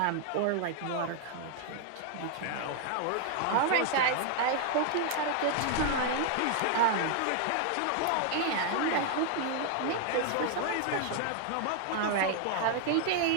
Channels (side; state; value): both; different; correlation 0.00